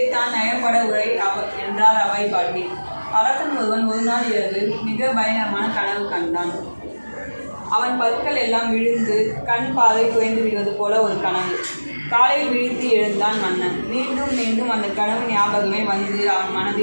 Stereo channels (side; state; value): both; inverted; correlation -1.00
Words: நயப்பட உரை என்றார் அவை பாட்டி. அரசன் ஒருவன் ஒரு நாள் இரவு மிக பயங்கரமான கனவு கண்டான். அவன் பற்கள் எல்லாம் விழுந்து கண் பார்வை குறைந்து விடுவது போல ஒரு கனவு. காலையில் விழித்து எழுந்தான் மன்னன். மீண்டும் மீண்டும் அந்த கனவு ஞாபகமே வந்து அவன்